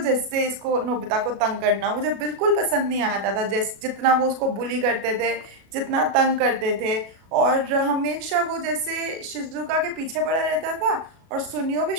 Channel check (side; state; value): left; late; 36 ms